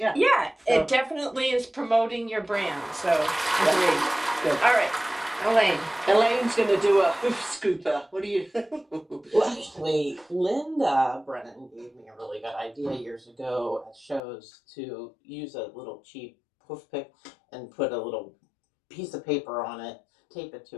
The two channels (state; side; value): drops out; right; at 14.2 s